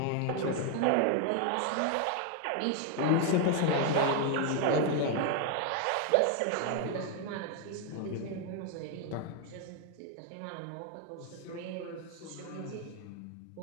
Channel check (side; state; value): both; different; correlation 0.01